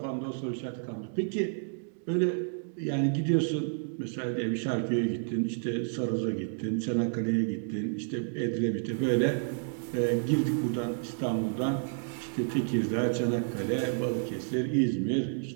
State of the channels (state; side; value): silent; left; digital silence